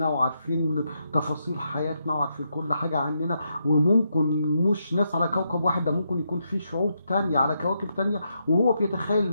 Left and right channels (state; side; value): inverted; both; correlation -0.81